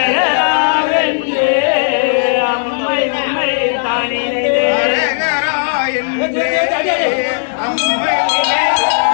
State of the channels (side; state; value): right; silent; digital silence